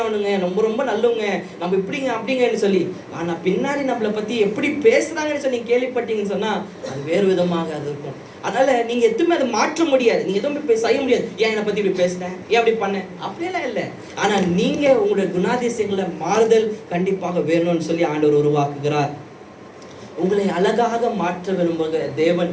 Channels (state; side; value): identical; both; correlation 1.00